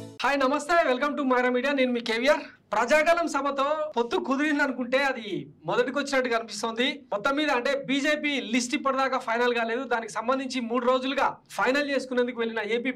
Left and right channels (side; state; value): both; identical; correlation 1.00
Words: హాయ్ నమస్తే వెల్కమ్ టు మైరా మీడియా నేను మీ కేవిఆర్ ప్రజాగలం సభతో పొత్తు కుదిరింది అనుకుంటే అది మొదటికి వచ్చినట్టుగా అనిపిస్తుంది మొత్తం మీద అంటే బీజేపీ లిస్ట్ ఇప్పటిదాకా ఫైనల్ కాలేదు దానికి సంబంధించి 3 రోజులుగా ఫైనల్ చేసుకునేందుకు వెళ్ళిన ఏపీ